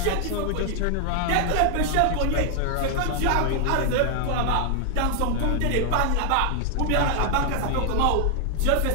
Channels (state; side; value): different; both; correlation 0.00